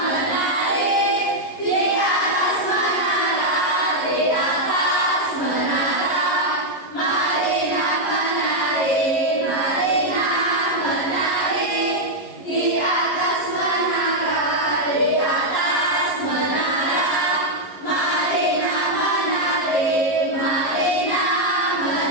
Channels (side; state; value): right; late; 11 ms